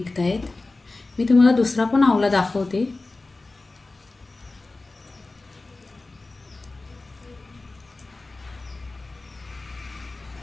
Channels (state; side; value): quieter; right; 3.3 dB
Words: आहेत। मी तुम्हाला दुसरा पण आवला दाखवते।